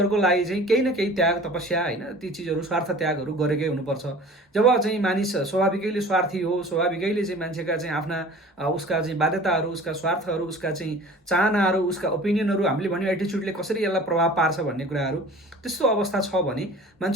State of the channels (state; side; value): normal; both; correlation 0.44